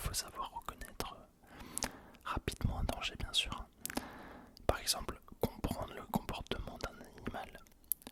savoir reconnaître rapidement un danger, bien sûr. Par exemple, comprendre le comportement d'un animal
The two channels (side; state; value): both; identical; correlation 1.00